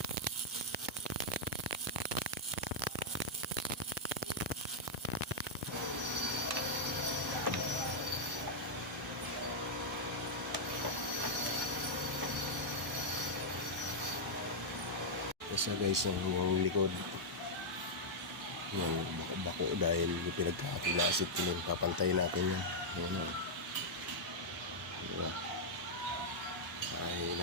Isa guys, yung likod yung bako dahil yung pinagkakapulasit ko nun, papantayin natin yan. Yan o, diba? Ay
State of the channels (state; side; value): normal; both; correlation -0.06